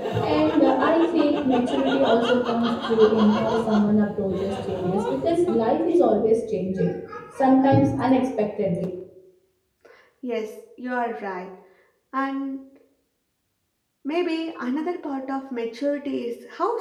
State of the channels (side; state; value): both; identical; correlation 1.00